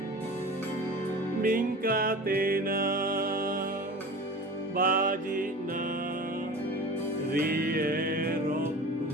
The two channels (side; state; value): both; normal; correlation 0.35